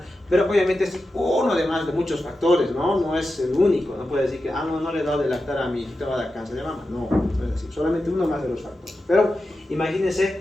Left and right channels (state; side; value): normal; both; correlation 0.91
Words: Pero obviamente es uno de muchos factores, ¿no? No es el único. No puede decir que no le he dado de lactar a mi hijita, va a dar cáncer de mama. No, no es así, solamente uno más de los factores. Pero imagínense